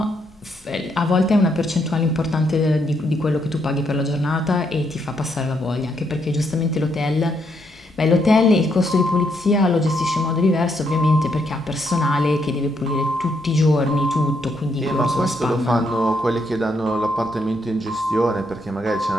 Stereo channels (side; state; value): both; normal; correlation 0.76